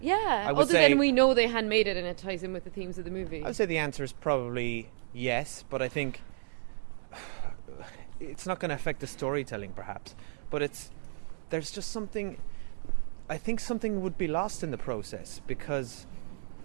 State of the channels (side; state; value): left; silent; digital silence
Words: Yeah. I would Other say- than we know they handmade it and it ties in with the themes of the movie. I would say the answer is probably yes, but I think it's not going to affect the storytelling, perhaps. But there's just something. I think something would be lost in the process because